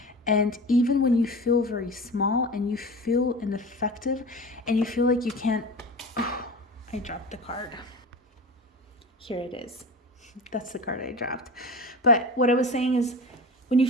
And even when you feel very small and you feel ineffective and you feel like you can't... Oh, I dropped the card. Here it is. That's the card I dropped. But what I was saying is, when you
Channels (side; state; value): both; normal; correlation 0.32